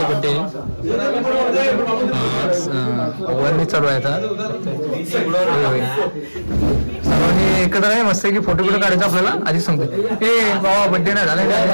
बर्थडे वरनी चालू आहे आता। सर्वांनी एकत्र आहे मस्त की फोटो काढायचा आपल्याला। आधी सांगतो ए बाबा बर्थडे नाही झाला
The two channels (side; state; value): both; inverted; correlation -1.00